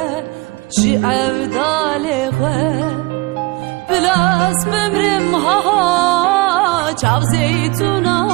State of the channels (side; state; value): left; quieter; 23.2 dB